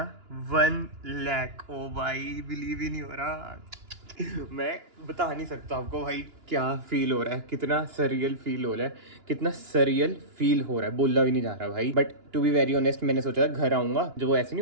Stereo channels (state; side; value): late; left; 2.9 ms